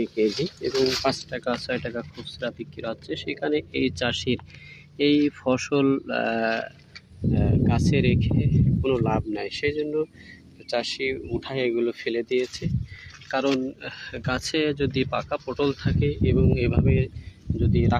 কেজি এবং ৫ টাকা ৬ টাকা খুচরা বিক্রি হচ্ছে। সেখানে এই চাষির এই ফসল গাছে রেখে কোনো লাভ নাই, সেই জন্য চাষি উঠায় এগুলো ফেলে দিয়েছে। কারণ গাছে যদি পাকা পটল থাকে এবং এভাবে যদি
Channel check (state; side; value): identical; both; correlation 1.00